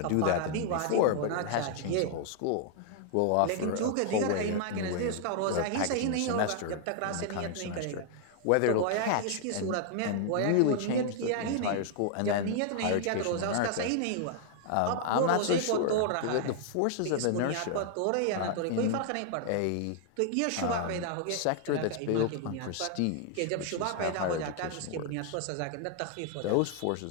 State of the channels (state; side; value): different; both; correlation 0.00